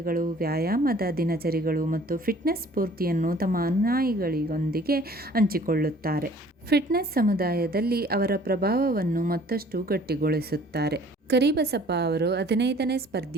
ವ್ಯಾಯಾಮದ ದಿನಚರಿಗಳು ಮತ್ತು ಫಿಟ್ನೆಸ್ ಸ್ಫೂರ್ತಿಯನ್ನು ತಮ್ಮ ಅನುಯಾಯಿಗಳೊಂದಿಗೆ ಹಂಚಿಕೊಳ್ಳುತ್ತಾರೆ. ಫಿಟ್ನೆಸ್ ಸಮುದಾಯದಲ್ಲಿ ಅವರ ಪ್ರಭಾವವನ್ನು ಮತ್ತಷ್ಟು ಗಟ್ಟಿಗೊಳಿಸುತ್ತಾರೆ. ಕರಿಬಸಪ್ಪ ಅವರು 15ನೇ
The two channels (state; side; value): normal; both; correlation 0.53